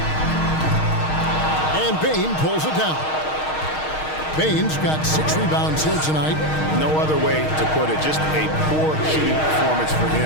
And Bain pulls it down. Baines got 6 rebounds here tonight. No other way to put it. Just a poor shooting performance for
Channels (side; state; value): right; late; 6.4 ms